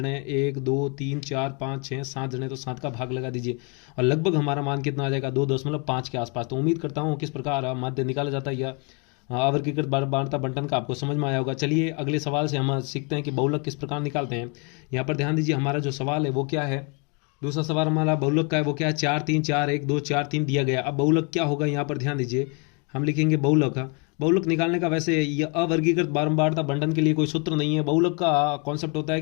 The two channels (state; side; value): quieter; right; 34.7 dB